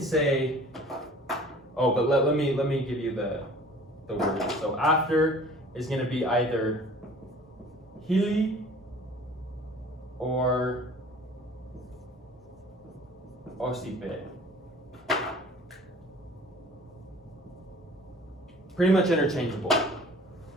oh, but let me give you the word. So after is going to be either hili or osipe. Pretty much interchangeable.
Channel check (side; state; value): both; normal; correlation 0.48